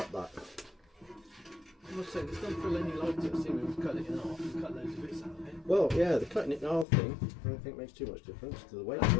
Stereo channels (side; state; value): right; drops out; at 6.9 s